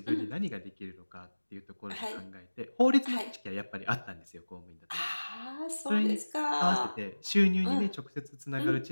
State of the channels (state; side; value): inverted; both; correlation -1.00